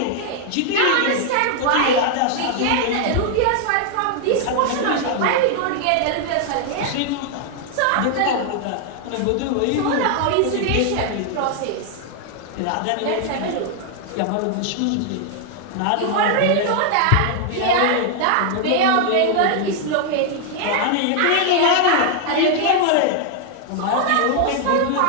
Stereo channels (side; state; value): both; different; correlation 0.00